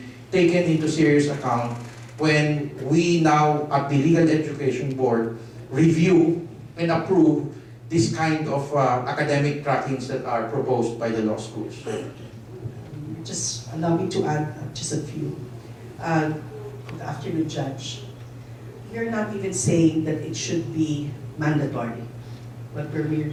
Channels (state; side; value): identical; both; correlation 1.00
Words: taken into serious account when we now at the Legal Education Board review and approve this kind of academic trackings that are proposed by the law schools. Just allow me to add just a few. Good afternoon, Judge. We're not even saying that it should be mandatory, but we're